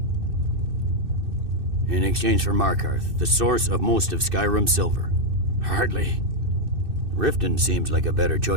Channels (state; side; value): late; left; 2.6 ms